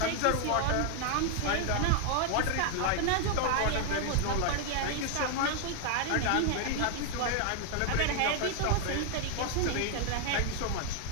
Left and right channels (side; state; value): both; different; correlation 0.00